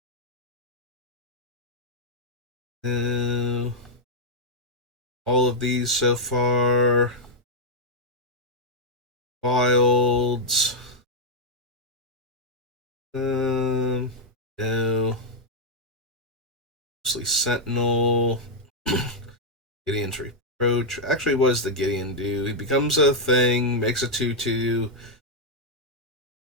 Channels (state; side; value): normal; both; correlation -0.03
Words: All of these so far. Wilds. No. Mostly Sentinel. Gideon's Reproach. Actually, what does the Gideon do? He becomes a thing, makes a 2/2.